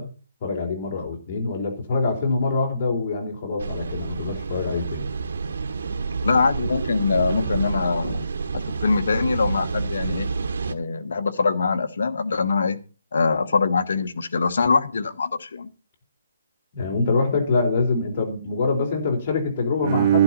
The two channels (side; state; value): both; inverted; correlation -0.77